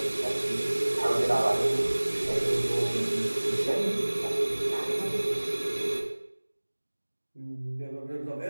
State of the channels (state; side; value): inverted; both; correlation -1.00